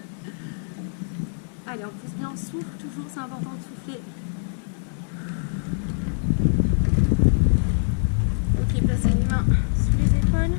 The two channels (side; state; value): right; silent; digital silence